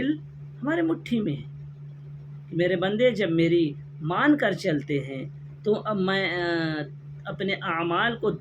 ہمارے مٹھی میں ہیں۔ میرے بندے جب میری مان کر چلتے ہیں تو اب میں اپنے اعمال کو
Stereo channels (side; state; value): both; identical; correlation 1.00